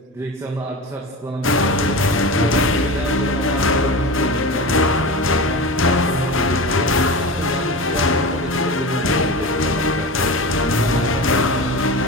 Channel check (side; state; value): both; normal; correlation 0.28